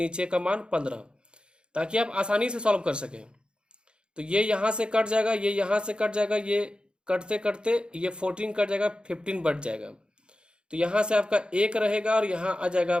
का मान 15, ताकि आप आसानी से सॉल्व कर सकें। तो ये यहाँ से कट जाएगा, ये यहाँ से कट जाएगा, ये कटते कटते ये 14 कट जाएगा, 15 बच जाएगा। तो यहाँ से आपका 1 रहेगा और यहाँ आ जाएगा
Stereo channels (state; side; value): late; left; 0.052 ms